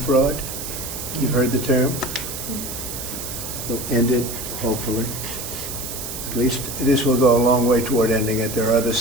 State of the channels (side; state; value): right; noise; hiss, 7 dB below the sound